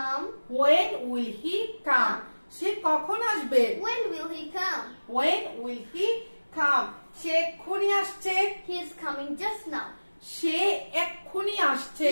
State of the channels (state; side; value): inverted; both; correlation -1.00